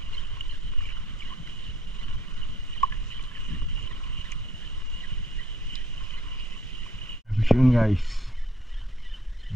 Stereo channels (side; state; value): both; normal; correlation 0.60